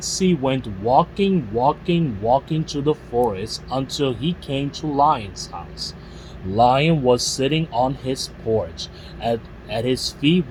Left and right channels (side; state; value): both; identical; correlation 1.00